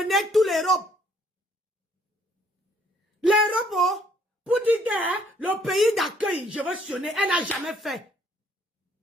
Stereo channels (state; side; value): normal; both; correlation 0.64